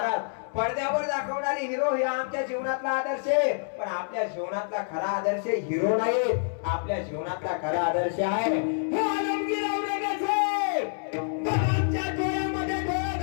पडद्यावर दाखवणारी हिरो हे आमच्या जीवनातला आदर्श आहे पण आपल्या जीवनातला खरा आदर्श हिरो नाही आपल्या जीवनातला खरा आदर्श आहे हे आलमगीर औरंगजेब बाबांच्या डोळ्यामध्ये डोळे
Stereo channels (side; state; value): right; silent; 60 dB below the other